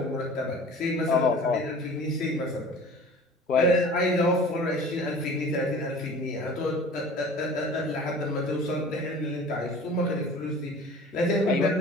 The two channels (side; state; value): both; normal; correlation 0.43